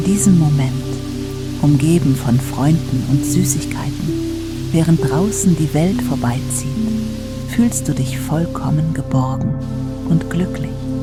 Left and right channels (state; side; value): identical; both; correlation 1.00